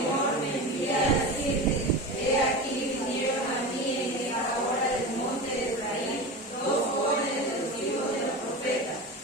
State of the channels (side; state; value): both; normal; correlation 0.27